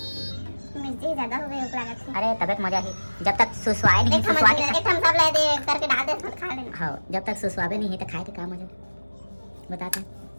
मिर्ची ज्यादा हो गई हो लागत है। अरे तबियत मजा ही जब तक सुसवाए नहीं एक सुसवा के हम सब ले दे करके डाल दे खा लेना। हाँ जब तक सुसवाबे नहीं है तो खाए के काम मजा बताते हैं।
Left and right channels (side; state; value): both; inverted; correlation -1.00